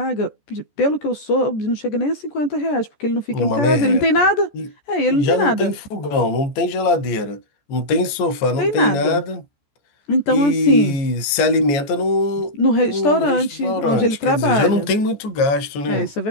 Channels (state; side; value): late; right; 14 ms